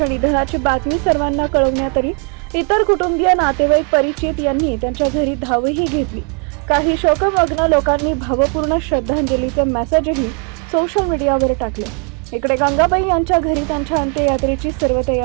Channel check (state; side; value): quieter; left; 38.7 dB